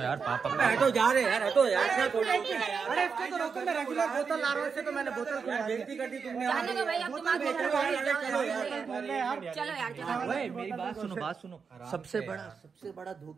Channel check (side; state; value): left; quieter; 5.7 dB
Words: पापा हटो जा रहे यार, हटो यार। अरे इसको तो रोको, मैं रेगुलर बोतल ला रहा हूँ, इससे तो मैंने बोतल बेइज्जती कर दी तुमने। जाने दो भाई, अब तुम आगे चलो यार चलो यार चलो। ओए मेरी बात सुनो, बात सुनो। सबसे बड़ा